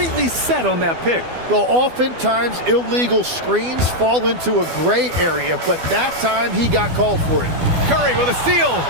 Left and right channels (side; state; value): left; late; 12 ms